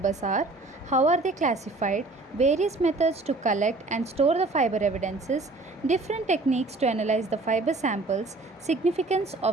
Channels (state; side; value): quieter; left; 3.2 dB